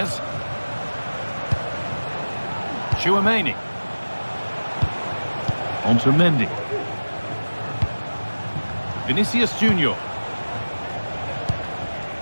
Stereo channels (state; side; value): inverted; both; correlation -1.00